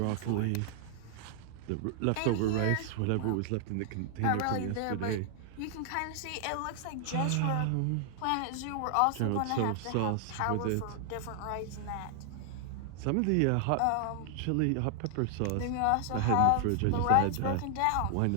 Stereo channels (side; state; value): both; different; correlation 0.00